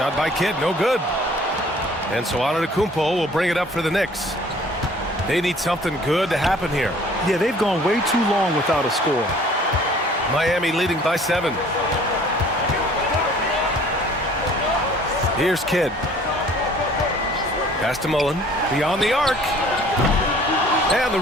by Kidd, no good. And so Antetokounmpo will bring it up for the Knicks. They need something good to happen here. Yeah, they've gone way too long without a score. Miami leading by 7. Here's Kidd. Pass to Mullen. Beyond the arc. And the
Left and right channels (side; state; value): both; normal; correlation 0.53